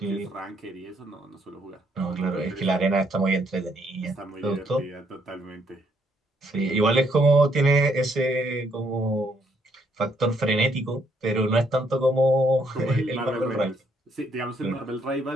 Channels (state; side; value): normal; both; correlation 0.71